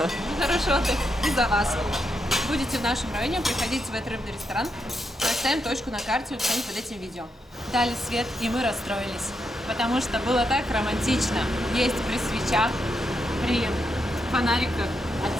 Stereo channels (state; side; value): normal; both; correlation 0.82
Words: Хороший отдых и за вас. Будете в нашем районе, приходите в этот рыбный ресторан. Поставим точку на карте в описании под этим видео. Дали свет, и мы расстроились. Потому что было так романтично есть при свечах, при фонариках